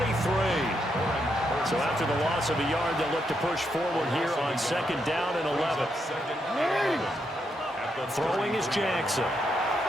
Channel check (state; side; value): normal; both; correlation 0.80